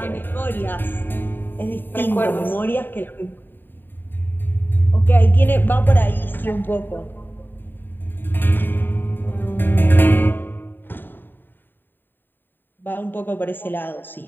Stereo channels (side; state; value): right; late; 0.094 ms